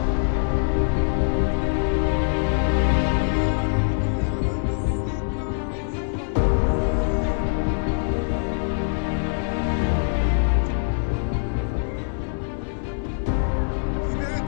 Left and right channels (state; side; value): silent; right; 63 dB below the other